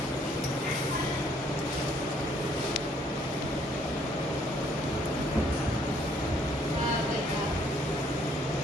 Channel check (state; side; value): normal; both; correlation 0.65